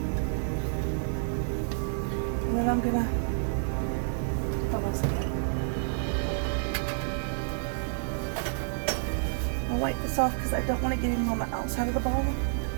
And then I'm gonna, hold on a second. wipe this off because I don't want to get any on the outside of the ball.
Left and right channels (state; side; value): silent; left; digital silence